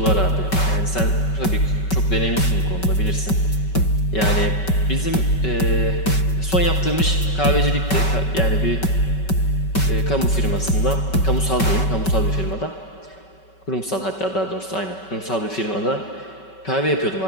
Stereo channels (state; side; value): late; right; 5.3 ms